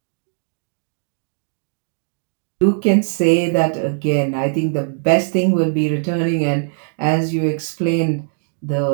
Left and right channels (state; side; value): silent; left; digital silence